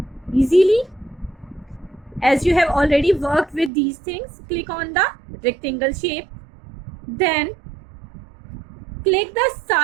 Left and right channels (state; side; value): drops out; left; at 3.7 s